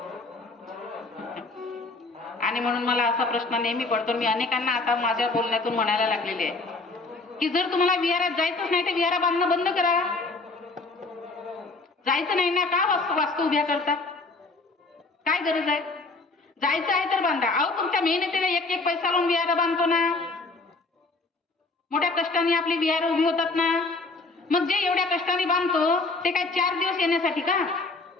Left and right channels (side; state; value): right; quieter; 3.5 dB